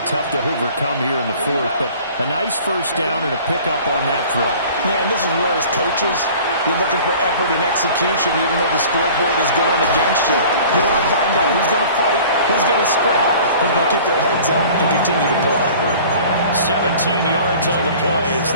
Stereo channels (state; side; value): inverted; both; correlation -0.46